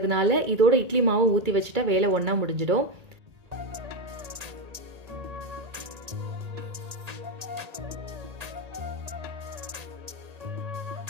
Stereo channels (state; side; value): late; left; 1.8 ms